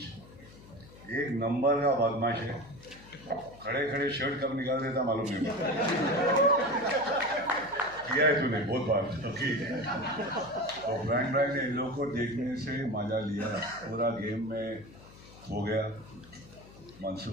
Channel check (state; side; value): noise; left; hum, 20 dB below the sound